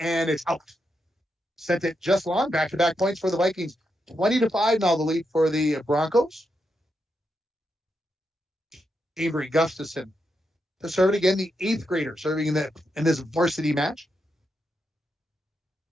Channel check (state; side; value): normal; both; correlation 0.84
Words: it's out. Sent it just long. Back-to-back points for the Vikings. 20-5 now the lead for the Broncos. Avery Gustafson to serve it again, the 8th grader serving in this varsity match.